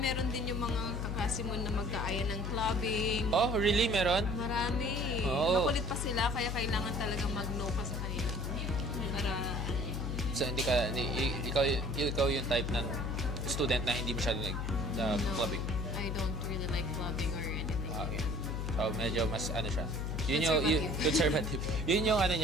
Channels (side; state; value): left; noise; hum, 2 dB below the sound